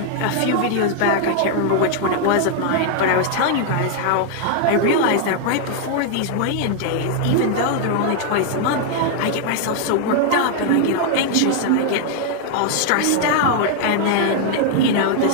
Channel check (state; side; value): different; both; correlation 0.00